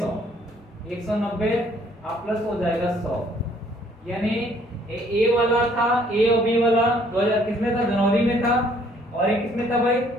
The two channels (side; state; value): both; normal; correlation 0.62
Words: 190 आप प्लस हो जाएगा 100। यानी ए वाला था, ए और बी वाला 2000 किसमें था? जनवरी में था। और ये किसमें था भाई?